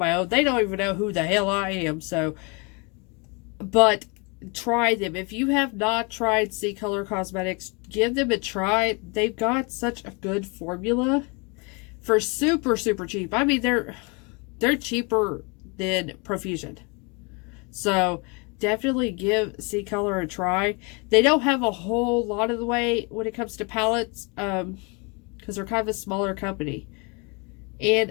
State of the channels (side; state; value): right; quieter; 31.1 dB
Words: own. They don't even know who the hell I am. So, but try them. If you have not tried Ccolor Cosmetics, give them a try. They've got such a good formula for super, super cheap. I mean, they're cheaper than Profusion. So, definitely give Ccolor a try. They don't have a whole lot of the way when it comes to palettes, because they're kind of a smaller company.